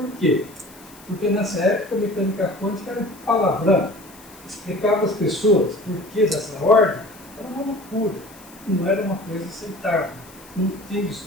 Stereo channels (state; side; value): noise; left; hiss, 22 dB below the sound